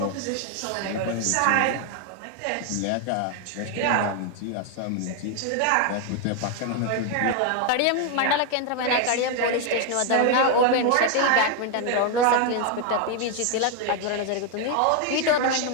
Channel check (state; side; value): different; both; correlation 0.01